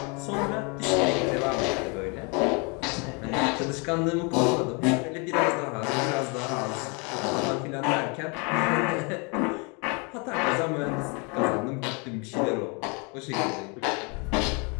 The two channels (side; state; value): right; quieter; 32.5 dB